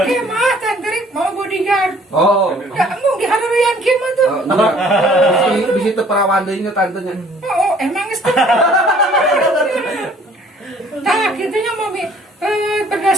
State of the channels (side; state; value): both; normal; correlation 0.57